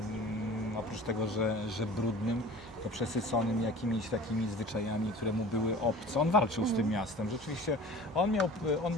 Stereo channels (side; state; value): both; normal; correlation 0.41